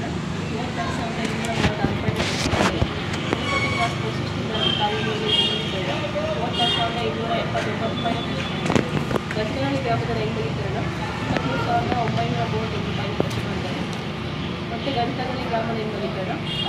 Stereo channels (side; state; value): both; identical; correlation 1.00